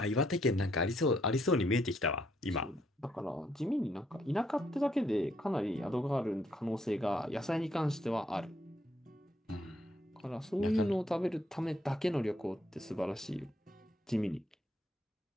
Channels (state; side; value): normal; both; correlation 0.72